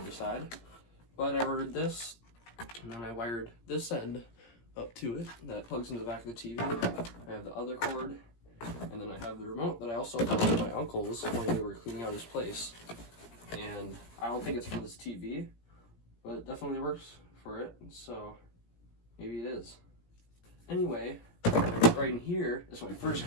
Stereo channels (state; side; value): late; right; 17 ms